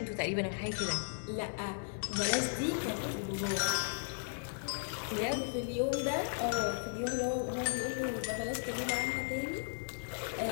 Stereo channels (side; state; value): right; silent; digital silence